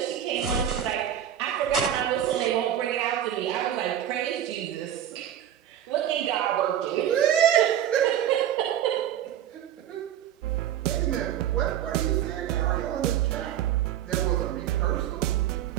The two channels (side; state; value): left; quieter; 10.6 dB